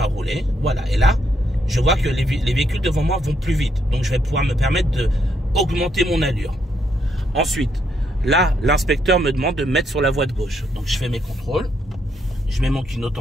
rouler. Voilà, et là, je vois que les véhicules devant moi vont plus vite. Donc, je vais pouvoir me permettre d'augmenter mon allure. Ensuite, là, l'inspecteur me demande de mettre sur la voie de gauche. Donc, je fais mes contrôles. Je mets mon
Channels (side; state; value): both; normal; correlation 0.76